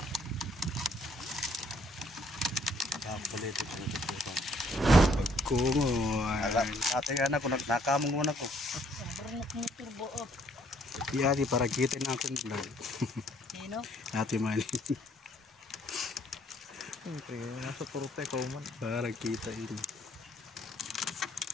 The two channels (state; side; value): normal; both; correlation 0.64